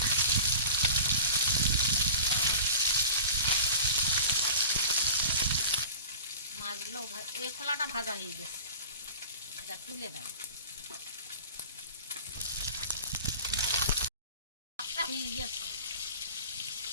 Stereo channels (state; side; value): inverted; both; correlation -0.37